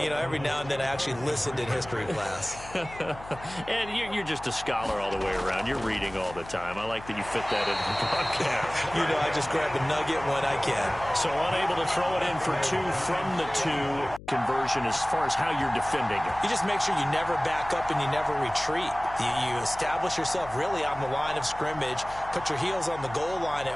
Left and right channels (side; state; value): left; noise; hum, 16 dB below the sound